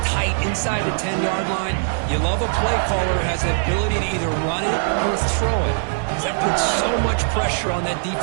tight inside the 10-yard line. You love a play caller who has the ability to either run it or throw it. That puts so much pressure on that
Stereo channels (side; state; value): left; silent; digital silence